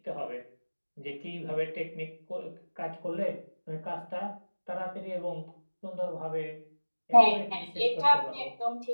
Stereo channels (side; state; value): both; inverted; correlation -1.00